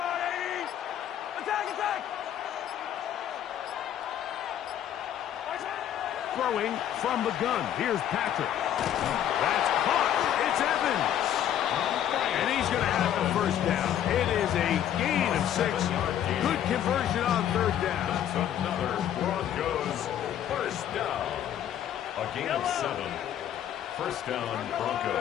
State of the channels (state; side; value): quieter; right; 10.7 dB